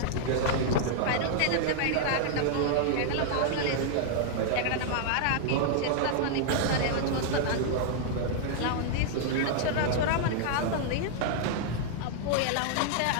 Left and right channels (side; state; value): both; different; correlation -0.01